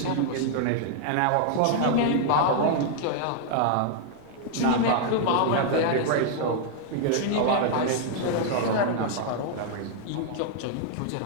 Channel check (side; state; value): both; different; correlation 0.00